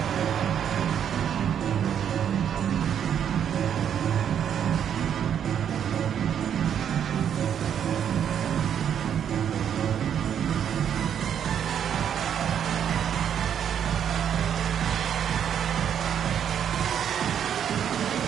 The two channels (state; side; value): quieter; left; 8.9 dB